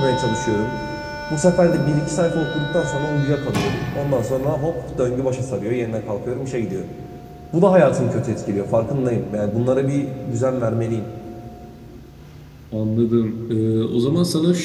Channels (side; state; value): both; identical; correlation 1.00